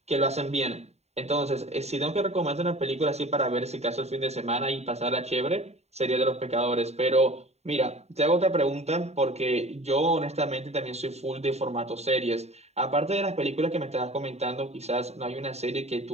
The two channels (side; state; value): left; late; 0.31 ms